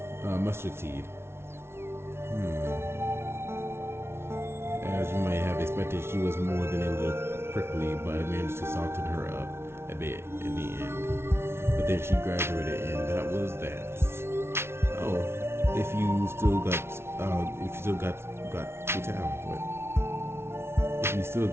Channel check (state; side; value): late; left; 0.12 ms